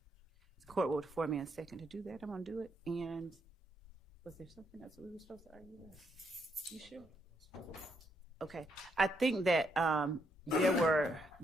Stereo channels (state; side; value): normal; both; correlation 0.76